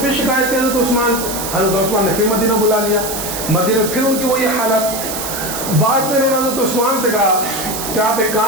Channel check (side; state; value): right; noise; hiss, 6 dB below the sound